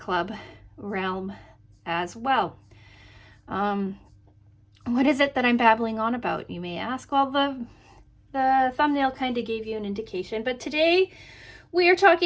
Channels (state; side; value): identical; both; correlation 1.00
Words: realm as well. What is it that I'm babbling on about, you may ask? Well, the thumbnail kind of gave you an indication, but today we are